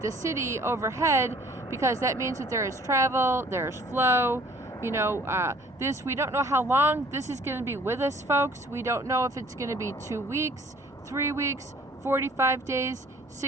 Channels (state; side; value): normal; both; correlation 0.54